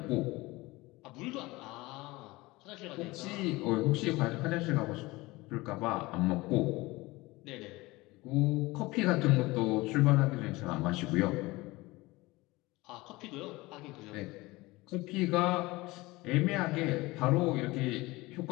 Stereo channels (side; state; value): right; quieter; 21.2 dB